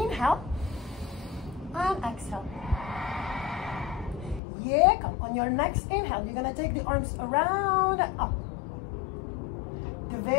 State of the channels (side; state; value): right; drops out; at 4.4 s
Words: and exhale. Yeah, come on your next inhale, you're gonna take the arms around and up. The